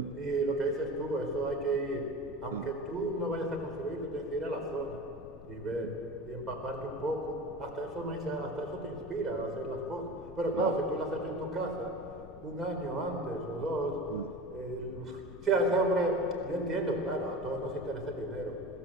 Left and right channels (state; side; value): noise; left; rumble, 16 dB below the sound